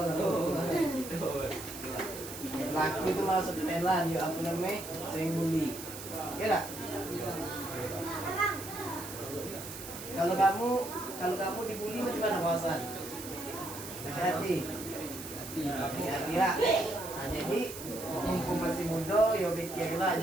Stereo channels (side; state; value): right; noise; hiss, 11 dB below the sound